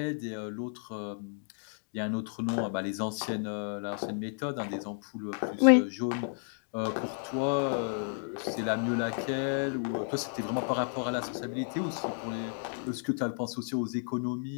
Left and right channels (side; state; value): right; silent; 56 dB below the other